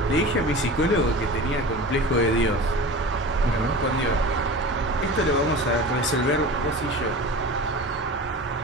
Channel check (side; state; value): both; normal; correlation 0.34